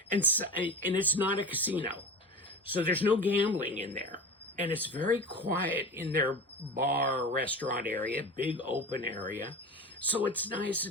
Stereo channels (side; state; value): both; normal; correlation 0.31